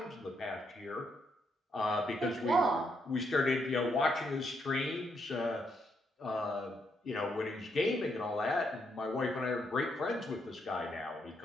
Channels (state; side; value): normal; both; correlation 0.77